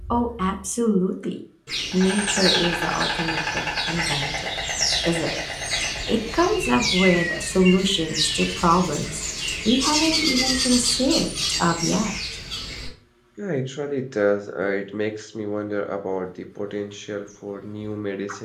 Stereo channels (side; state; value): both; identical; correlation 1.00